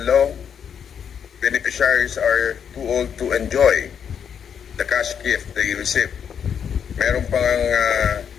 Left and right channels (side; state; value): right; quieter; 7.8 dB